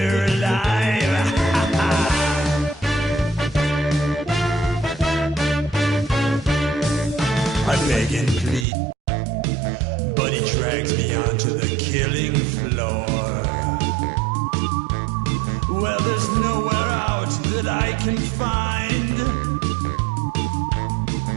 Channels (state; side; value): drops out; left; at 8.7 s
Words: alive. I beg and plead, but he drags me onto the killing floor. Well, there's nowhere out that I can find.